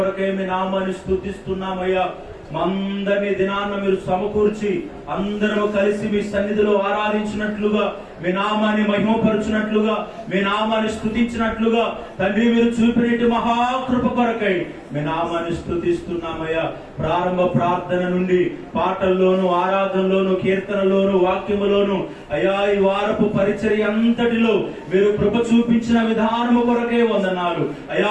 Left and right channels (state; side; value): identical; both; correlation 1.00